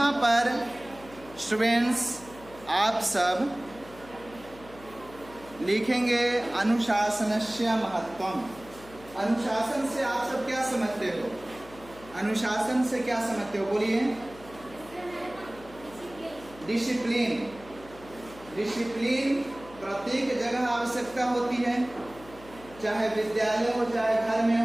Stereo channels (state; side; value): noise; left; hum, 20 dB below the sound